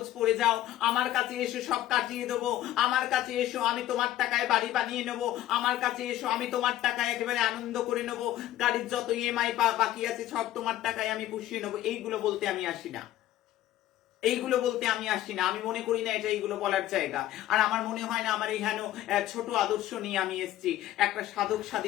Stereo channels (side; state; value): right; quieter; 13.7 dB